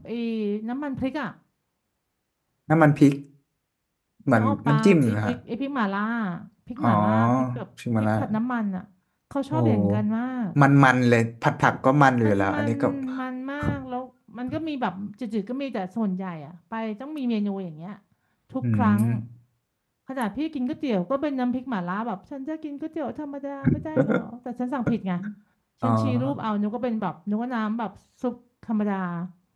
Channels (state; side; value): identical; both; correlation 1.00